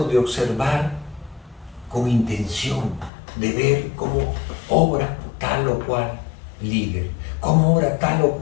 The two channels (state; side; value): drops out; right; at 3.1 s